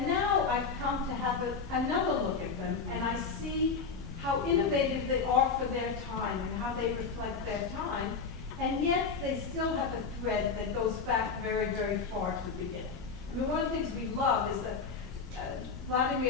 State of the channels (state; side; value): quieter; right; 5.1 dB